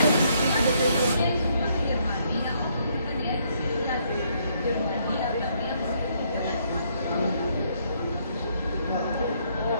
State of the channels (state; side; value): inverted; both; correlation -0.70